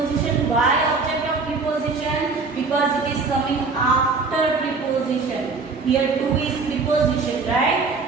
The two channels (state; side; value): quieter; left; 4.3 dB